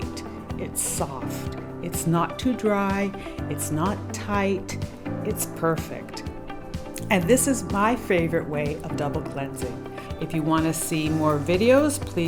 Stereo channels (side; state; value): both; identical; correlation 1.00